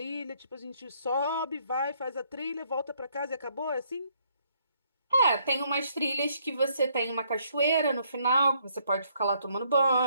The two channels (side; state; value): both; inverted; correlation -0.69